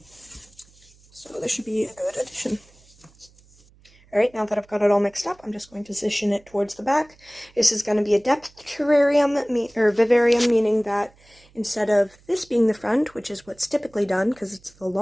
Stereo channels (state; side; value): noise; right; hum, 29 dB below the sound